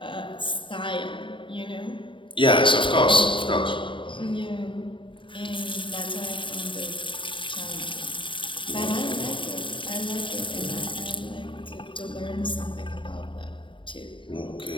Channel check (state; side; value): late; right; 0.24 ms